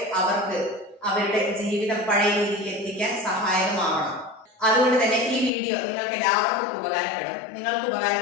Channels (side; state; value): right; drops out; at 5.5 s